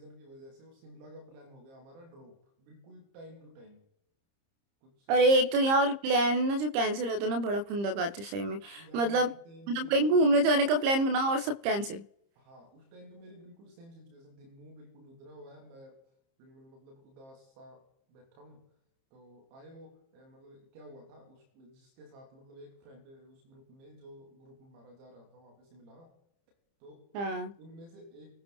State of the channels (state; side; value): late; left; 30 ms